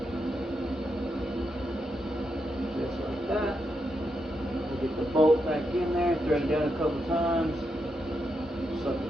Just like that. We'll get the bolt back in there, thread it down a couple times. Suck the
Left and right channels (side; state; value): both; normal; correlation 0.83